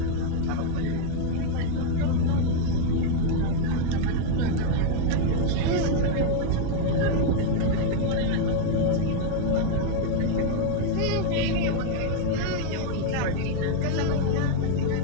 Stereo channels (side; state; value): both; different; correlation 0.00